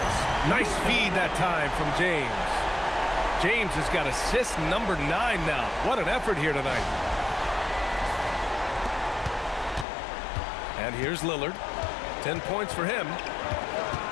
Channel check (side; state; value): right; drops out; at 9.9 s